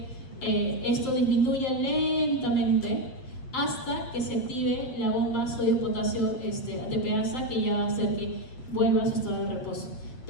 esto disminuya lentamente hasta que se active la bomba sodio-potasio ATPasa, que ya va a hacer que vuelva a su estado de reposo.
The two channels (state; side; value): late; right; 7.7 ms